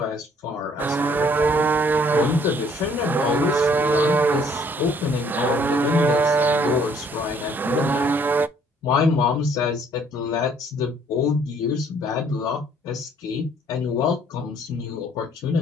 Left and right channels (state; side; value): normal; both; correlation 0.61